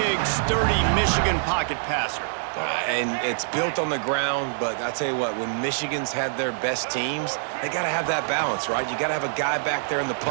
sturdy Michigan pocket passer. And it's built on the ground, but I tell you what, when Michigan's had their best teams, they got to have that balance, right? You got to have a guy back there in the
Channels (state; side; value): silent; left; 62 dB below the other